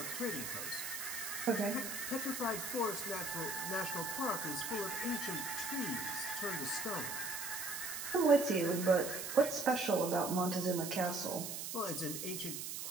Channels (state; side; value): noise; right; hiss, 5 dB below the sound